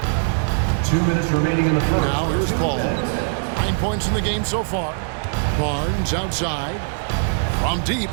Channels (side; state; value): left; silent; 65 dB below the other